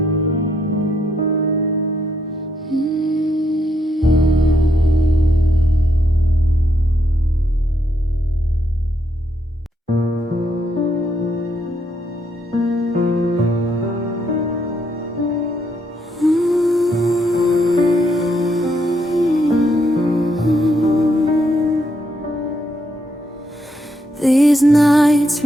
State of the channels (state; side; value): normal; both; correlation 0.76